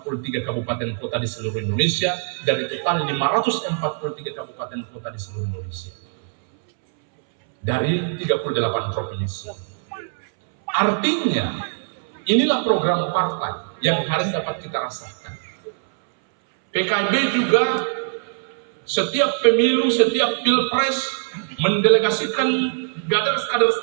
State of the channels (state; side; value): silent; left; 64 dB below the other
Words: kabupaten kota di seluruh Indonesia dari total 543 kabupaten kota di seluruh Indonesia dari 38 provinsi. Artinya inilah program partai yang hari dapat kita rasakan. PKB juga setiap pemilu, setiap pilpres mendelegasikan kader-kader